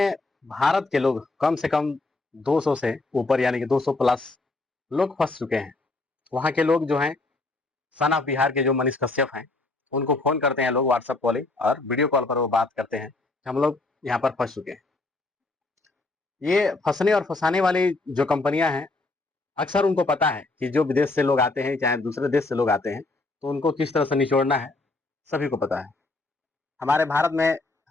भारत के लोग कम से कम 200 से ऊपर यानी कि 200 प्लस लोग फंस चुके हैं। वहाँ के लोग जो हैं सन ऑफ बिहार के जो मनीष कश्यप हैं उनको फ़ोन करते हैं लोग व्हाट्सएप कॉलिंग और वीडियो कॉल पर वो बात करते हैं कि हम लोग यहाँ पर फंस चुके हैं। ये फंसने और फंसाने वाली जो कंपनियां हैं अक्सर उनको पता है कि जो विदेश से लोग आते हैं चाहे दूसरे देश से लोग आते हैं तो उनको किस तरह से निचोड़ना है, सभी को पता है। हमारे भारत में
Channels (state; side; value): quieter; right; 3.2 dB